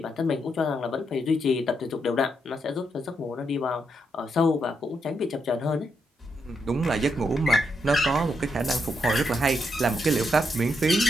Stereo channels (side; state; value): both; normal; correlation 0.80